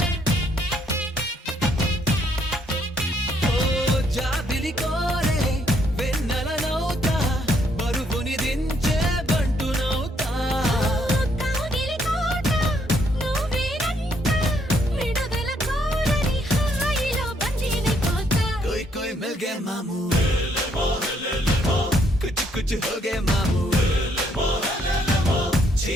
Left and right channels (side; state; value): both; normal; correlation 0.71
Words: ఓ జాబిలి కోరే వెన్నెలనవుతా బరువుని దించే బంటునవుతా కాగిలి కోట నువ్వేనంట విడుదల కోరని హాయిలో బందీనైపోతా कोई कोई मिल गए मामू कुछ कुछ हो गए मामू